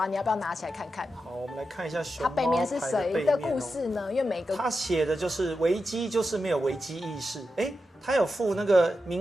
你要不要拿起来看看？好，我们来看一下熊猫。它背面是谁的故事呢？因为每个他写的就是危机就是没有危机意识。他有附那个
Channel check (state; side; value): normal; both; correlation 0.89